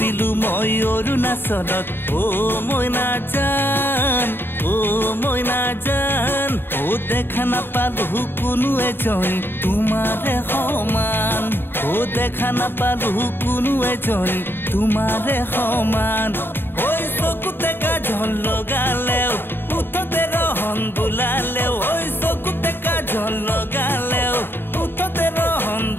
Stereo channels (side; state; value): right; late; 0.10 ms